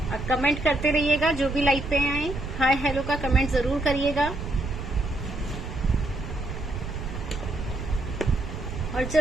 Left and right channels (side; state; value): right; noise; rumble, 8 dB below the sound